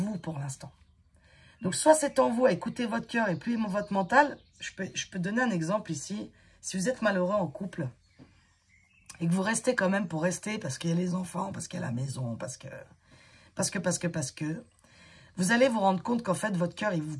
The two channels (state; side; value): identical; both; correlation 1.00